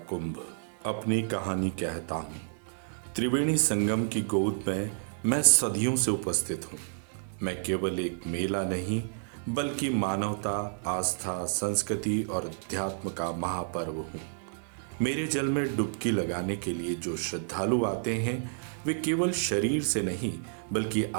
कुंभ अपनी कहानी कहता हूँ। त्रिवेणी संगम की गोद में मैं सदियों से उपस्थित हूँ। मैं केवल एक मेला नहीं बल्कि मानवता, आस्था, संस्कृति और अध्यात्म का महापर्व हूँ। मेरे जल में डुबकी लगाने के लिए जो श्रद्धालु आते हैं वे केवल शरीर से नहीं बल्कि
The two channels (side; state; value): left; silent; 58 dB below the other